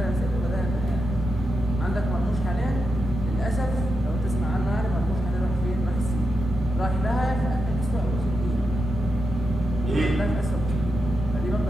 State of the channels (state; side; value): normal; both; correlation 0.87